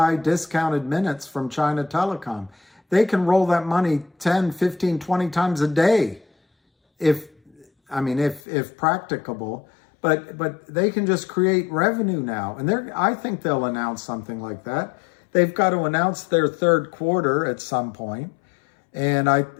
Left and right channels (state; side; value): drops out; right; at 8.4 s